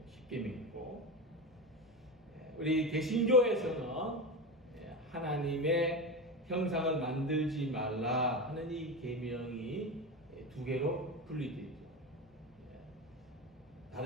10계명이고 우리 개신교에서는 하나님의 형상을 만들지 말라 하는 이 계명이 두 개로 분리되죠.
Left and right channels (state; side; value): normal; both; correlation 0.21